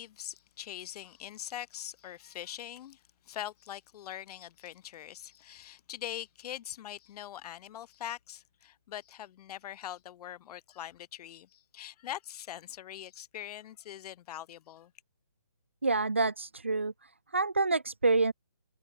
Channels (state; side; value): inverted; both; correlation -0.58